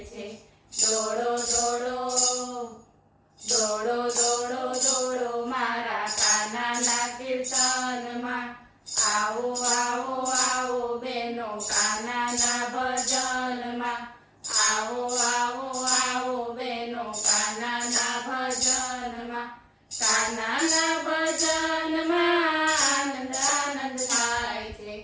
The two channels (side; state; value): both; identical; correlation 1.00